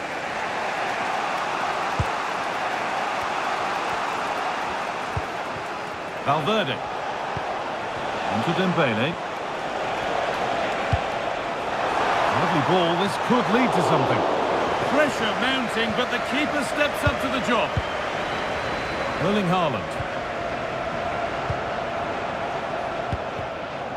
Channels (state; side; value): identical; both; correlation 1.00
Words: Valverde. Into Dembele. Lovely ball, this could lead to something. Pressure mounting, but the keeper steps up to the job. Erling Haaland.